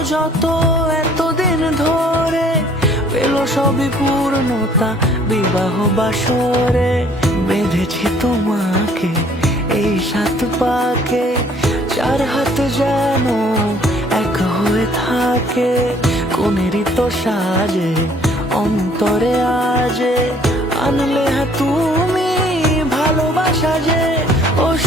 যত এতদিন ধরে, পেল সবই পূর্ণতা বিবাহ বাসরে। বেঁধেছি তোমাকে এই সাত পাকে, চার হাত যেন এক হয়ে থাকে। কোনেরই তো সাজে অন্তরে আজে, আনলে তুমি ভালোবাসা যে।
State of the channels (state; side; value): normal; both; correlation 0.58